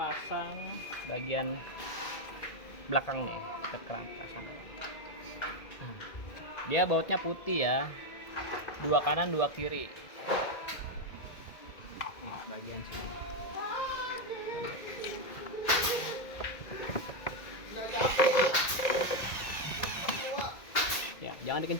bagian belakang nih, kita pasang. Dia bautnya putih ya, dua kanan dua kiri. Nih, bagian sini. Ya, jangan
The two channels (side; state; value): right; late; 2.1 ms